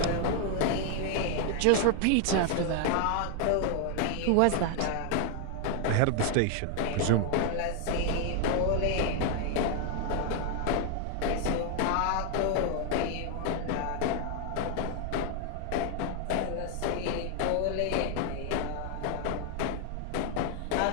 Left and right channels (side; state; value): both; different; correlation 0.00